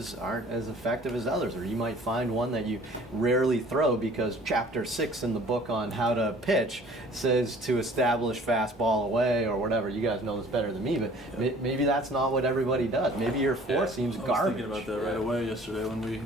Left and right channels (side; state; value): both; normal; correlation 0.50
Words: aren't as effective as others, or you might find one that you rarely throw because chapter 6 in the book on how to pitch says to establish fastball away or whatever. You guys know this better than me, but maybe that's not what everybody does. Maybe your 4 seems garbage. I was thinking about that right away yesterday when we